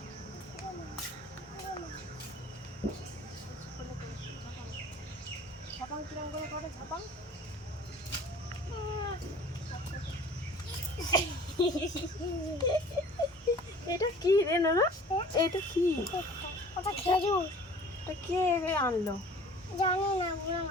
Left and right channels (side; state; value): both; normal; correlation 0.47